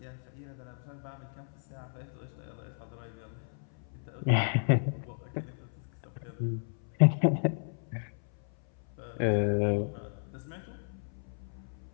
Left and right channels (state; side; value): silent; right; 55 dB below the other